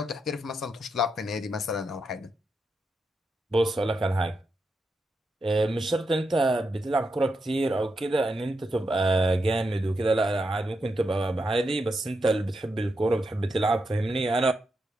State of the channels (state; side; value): normal; both; correlation 0.85